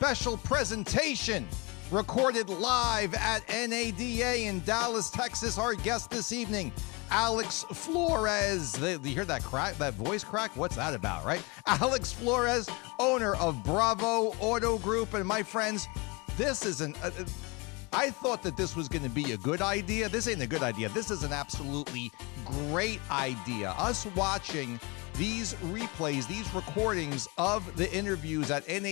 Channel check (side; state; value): right; quieter; 27.5 dB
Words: presentation recorded live at NADA in Dallas, Texas. Our guest this evening, Alex Flores. You hear that crack, that voice crack? What's that about, right? Alex Flores, owner of Bravo Auto Group. And my friends, this is I thought that this was going to be a good idea. This ain't a good idea. This is an absolutely great idea. Us watching these replays, these recordings of the interviews at